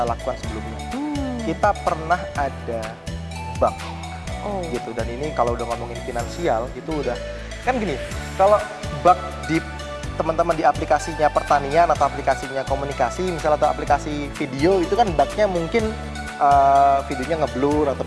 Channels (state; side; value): identical; both; correlation 1.00